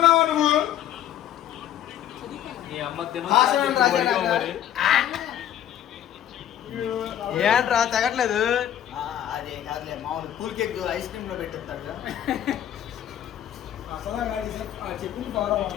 నువ్వు? ఏంట్రా తగ్గట్లేదు? అదే కాదులే మామూలు కూల్ కేక్ ఐస్ క్రీమ్ లో పెట్టేస్తాడు.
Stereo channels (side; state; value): right; quieter; 11.1 dB